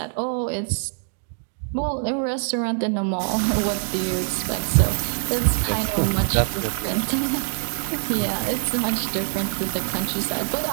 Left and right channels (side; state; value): left; silent; 63 dB below the other